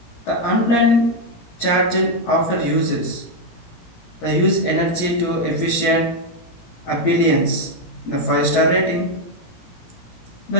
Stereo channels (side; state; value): right; late; 17 ms